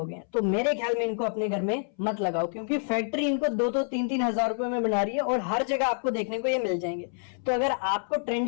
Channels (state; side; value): silent; right; 60 dB below the other